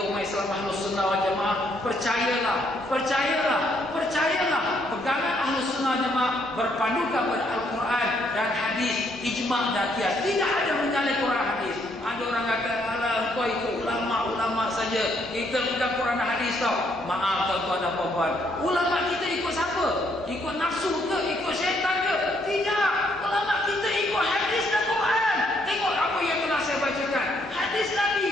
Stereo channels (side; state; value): both; normal; correlation 0.71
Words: umat Islam Ahlus Sunnah wal Jamaah percayalah pegangan Ahlus Sunnah wal Jamaah berpandukan pada Al-Quran dan hadis, ijma' dan qiyas. Tidak ada menyalahkan Quran hadis. Ada orang kata alah kau ikut ulama saja, kita bukan Quran dan hadis tau. Maaf tuan-tuan dan puan-puan, ulama kita ikut siapa? Ikut nafsu ke? Ikut syaitan ke? Tidak. Ulama kita ikut hadis dan Quran. Tengok apa yang telah saya bacakan. Hadis Nabi,